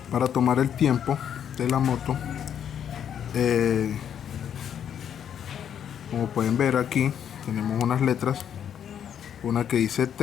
Para tomar el tiempo de la moto. Como pueden ver aquí, tenemos unas letras, una que dice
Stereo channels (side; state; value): right; quieter; 8.9 dB